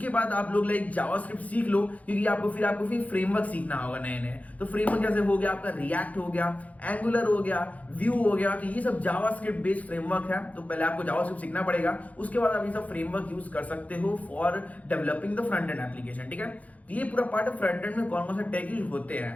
बाद आप लोग जावास्क्रिप्ट सीख लो, क्योंकि आपको फिर फ्रेमवर्क सीखना होगा नए नए। तो फ्रेमवर्क जैसे हो गया आपका रिएक्ट हो गया, एंगुलर हो गया, व्यू हो गया, तो ये सब जावास्क्रिप्ट बेस्ड फ्रेमवर्क है। तो पहले आपको जावास्क्रिप्ट सीखना पड़ेगा, उसके बाद आप ये सब फ्रेमवर्क यूज कर सकते हो for developing the front and application. ठीक है, तो ये पूरा पार्ट फ्रंट एंड में कौन कौन से टेक यूज होते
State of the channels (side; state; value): right; late; 0.070 ms